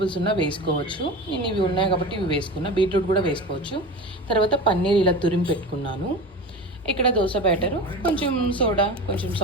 ఉన్నా వేసుకోవచ్చు. నేను ఇవి ఉన్నాయి కాబట్టి ఇవి వేసుకున్నా. బీట్రూట్ కూడా వేసుకోవచ్చు. తర్వాత పన్నీర్ ఇలా తురిమి పెట్టుకున్నాను. ఇక్కడ దోశ బ్యాటరు, కొంచెం సోడా, కొంచెం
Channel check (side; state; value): both; normal; correlation 0.30